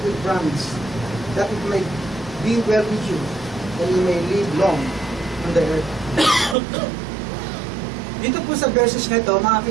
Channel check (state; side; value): drops out; left; at 6.6 s